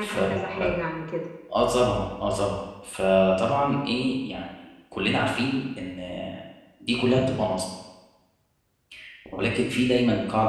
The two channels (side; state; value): both; identical; correlation 1.00